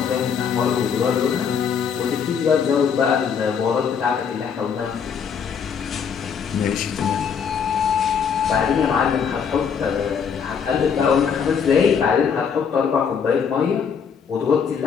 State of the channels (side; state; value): right; quieter; 6.8 dB